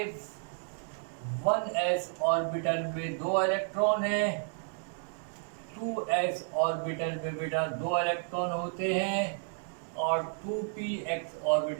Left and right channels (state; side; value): silent; left; 57 dB below the other